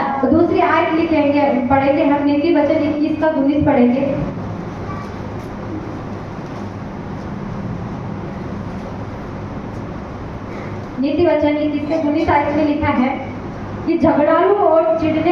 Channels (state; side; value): identical; both; correlation 1.00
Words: तो दूसरी आयत लिखेंगे, पढ़ेंगे हम नीति वचन 21 का 19 पढ़ेंगे। नीति वचन 21:19 में लिखा है कि झगड़ालू और